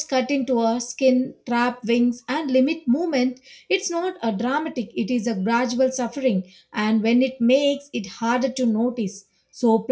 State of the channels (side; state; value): both; identical; correlation 1.00